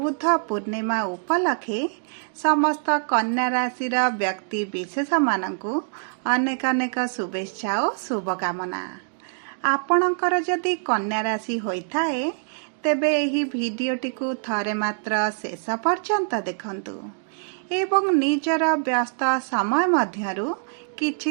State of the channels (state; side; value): silent; left; digital silence